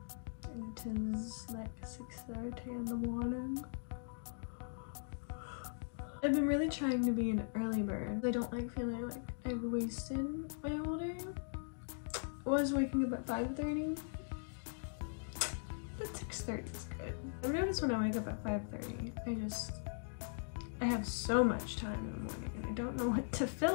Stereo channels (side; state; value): right; silent; digital silence